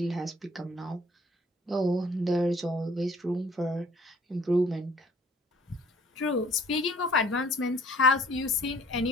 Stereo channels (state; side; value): normal; both; correlation 0.55